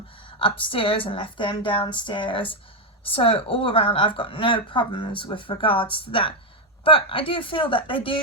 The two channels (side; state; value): both; normal; correlation 0.04